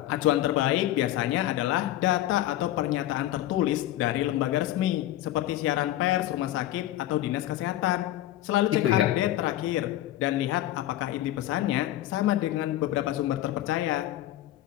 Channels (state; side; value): quieter; right; 14.1 dB